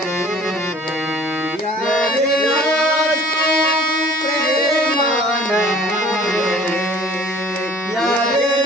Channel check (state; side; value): normal; both; correlation 0.51